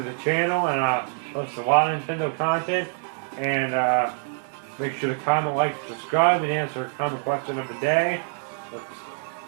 the channel, and I post a lot of Nintendo content. And make sure to comment, like, subscribe, and answer a common question of the day.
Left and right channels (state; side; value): silent; left; 62 dB below the other